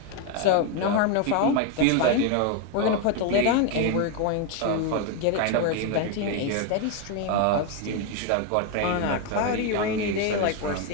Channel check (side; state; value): both; different; correlation 0.01